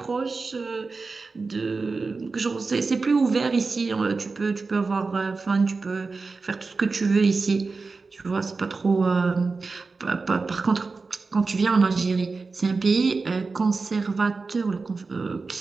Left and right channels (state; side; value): quieter; left; 4.2 dB